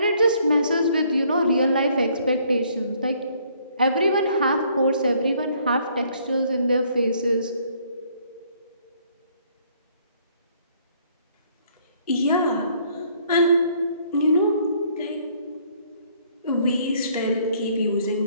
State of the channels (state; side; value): inverted; both; correlation -0.64